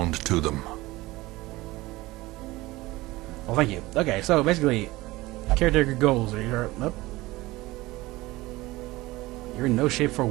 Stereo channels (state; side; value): quieter; left; 19.7 dB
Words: to them. Well, thank you. Okay, so basically, caretaker goals are here. Oh. You're in no shape for